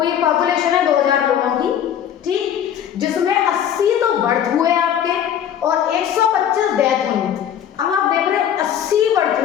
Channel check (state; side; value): quieter; right; 9.6 dB